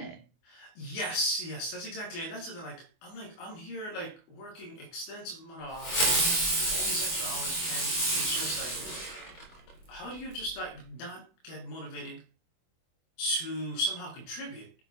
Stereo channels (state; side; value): late; right; 24 ms